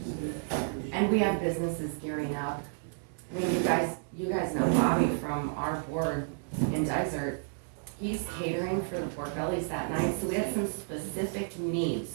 And we have businesses gearing up. I mean, you guys know Bobby from our board in Desert. He's catering for the pork bellies that night, so we have some specific needs.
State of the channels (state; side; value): silent; left; digital silence